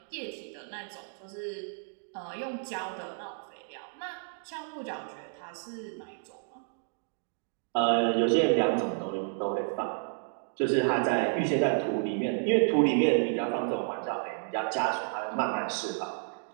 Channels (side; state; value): left; silent; 57 dB below the other